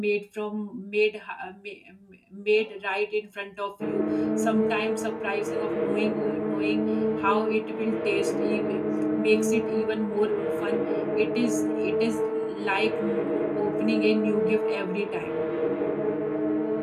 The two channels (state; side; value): identical; both; correlation 1.00